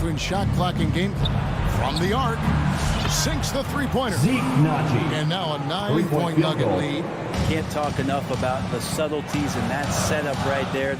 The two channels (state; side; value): identical; both; correlation 1.00